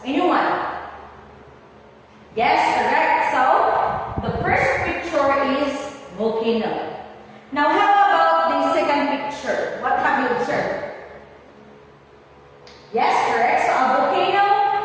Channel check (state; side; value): identical; both; correlation 1.00